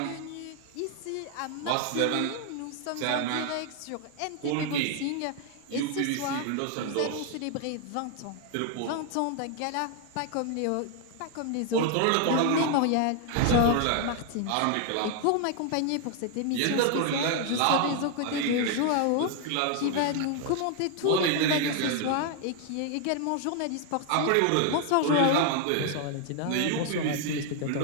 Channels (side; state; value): both; different; correlation 0.00